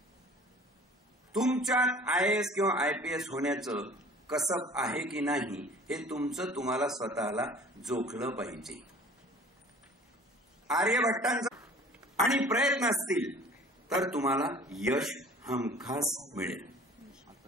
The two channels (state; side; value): normal; both; correlation 0.48